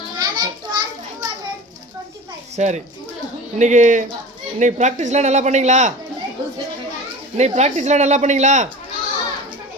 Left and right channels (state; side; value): normal; both; correlation 0.35